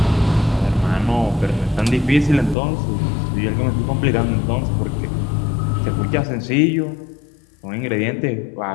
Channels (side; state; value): right; drops out; at 2.6 s